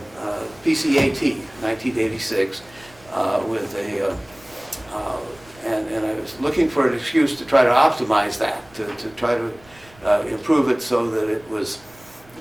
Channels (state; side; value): noise; right; rumble, 26 dB below the sound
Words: PCAT, 1986, with a and I was looking for an excuse to try to optimize that, to try to improve it so that it was